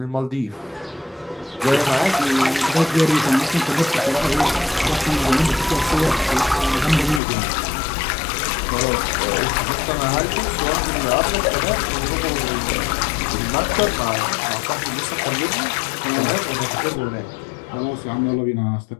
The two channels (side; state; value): right; drops out; at 7.2 s